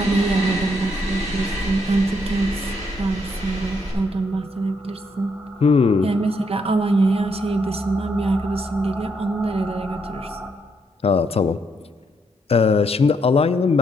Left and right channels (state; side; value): normal; both; correlation 0.76